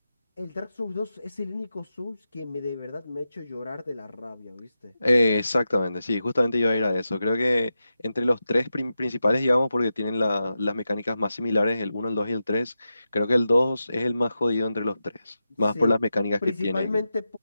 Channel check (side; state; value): both; inverted; correlation -0.90